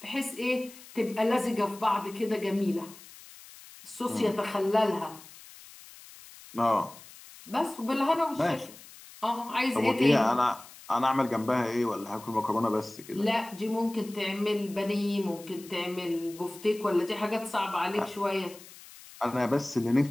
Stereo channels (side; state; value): left; noise; hiss, 19 dB below the sound